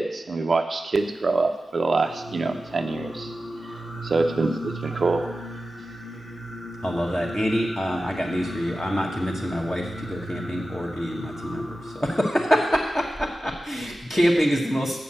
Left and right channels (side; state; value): both; normal; correlation 0.94